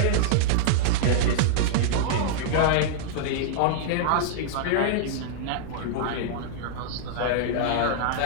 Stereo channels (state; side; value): different; both; correlation -0.01